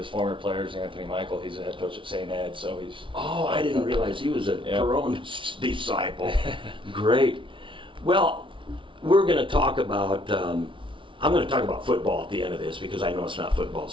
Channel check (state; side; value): late; left; 0.25 ms